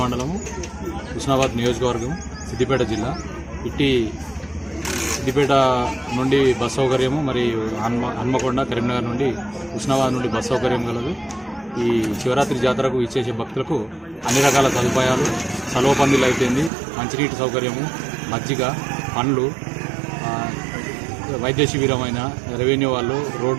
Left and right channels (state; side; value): drops out; left; at 16.7 s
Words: మండలము, హుస్నాబాద్ నియోజకవర్గం, సిద్దిపేట జిల్లా. ఇట్టి సిద్దిపేట నుండి బస్ సౌకర్యము, మరియు హన్మకొండ, కరీంనగర్ నుండి, హుస్నాబాద్ నుండి బస్ సౌకర్యం కలదు. ఈ శివరాత్రి జాతరకు ఇచ్చేసే భక్తులకు అన్ని రకాల సదుపాయాలు, సలవ పందిలు అయిపోయింది, మంచినీటి సౌకర్యము, మజ్జిగ, పండ్లు, వైద్య శిబిరమైన, రెవెన్యూ వాళ్ళు,